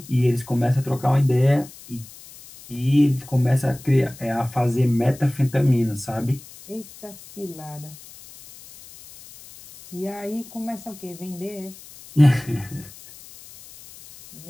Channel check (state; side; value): noise; left; hiss, 19 dB below the sound